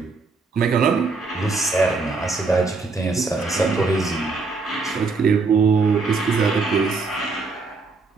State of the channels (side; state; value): left; quieter; 4.2 dB